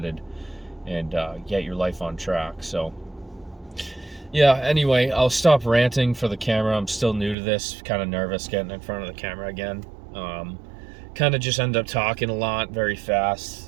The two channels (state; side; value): drops out; left; at 7.4 s